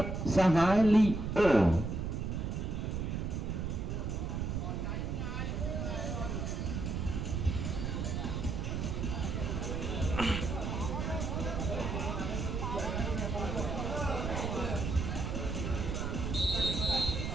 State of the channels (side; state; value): right; noise; rumble, 2 dB below the sound